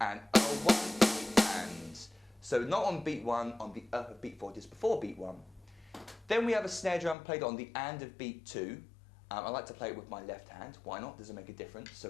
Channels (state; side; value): drops out; right; at 7.2 s